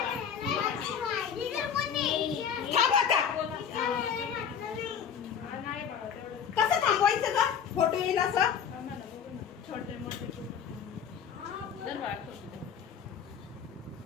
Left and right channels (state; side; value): quieter; right; 7.7 dB